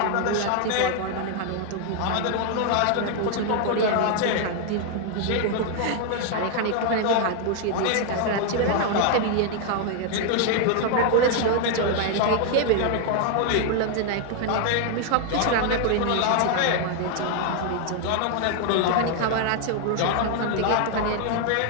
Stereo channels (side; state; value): both; different; correlation 0.00